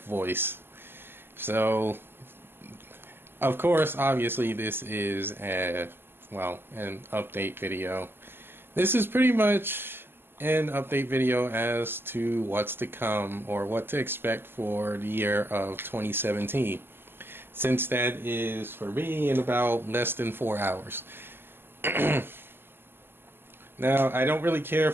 So, of course, obviously this is an update video. This is pretty much an update video as to what's to come or what to expect for the year of 2017. Since that is, for me, in about less than 4 hours. Now, I don't really care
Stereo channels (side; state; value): left; late; 0.11 ms